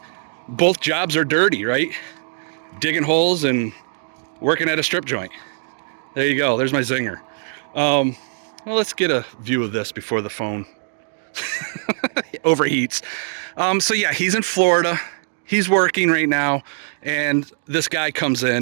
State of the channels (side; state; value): left; silent; digital silence